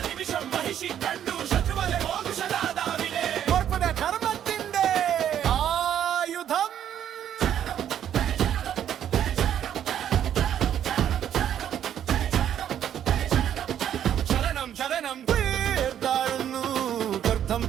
നിമിഷം മഹിഷി കണ്ടു ശത്രുവലെ മോക്ഷദാതാവിനെ ധർമ്മത്തിന്റെ ആയുധം ശരണം ശരണം താഴ്ന്നു ഗർഭം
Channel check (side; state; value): left; quieter; 10.1 dB